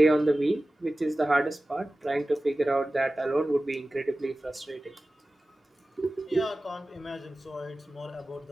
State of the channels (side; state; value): both; normal; correlation 0.96